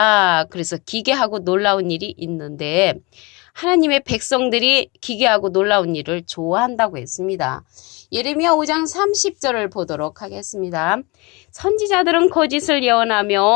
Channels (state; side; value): quieter; right; 26.2 dB